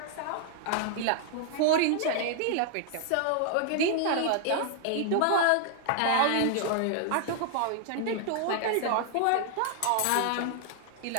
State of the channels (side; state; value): both; different; correlation 0.00